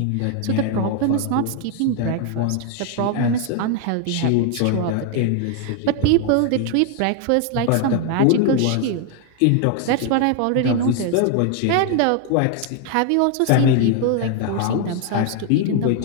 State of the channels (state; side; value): different; both; correlation 0.00